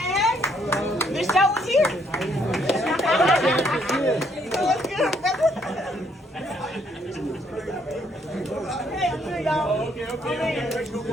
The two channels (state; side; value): normal; both; correlation 0.69